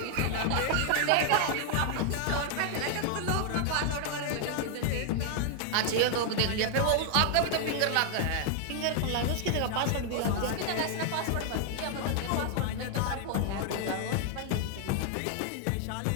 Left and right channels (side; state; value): both; different; correlation 0.00